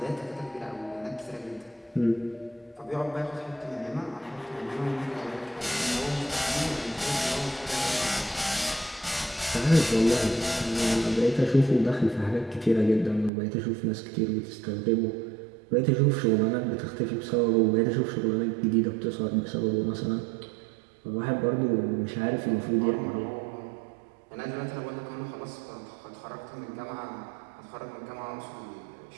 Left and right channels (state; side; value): drops out; left; at 13.3 s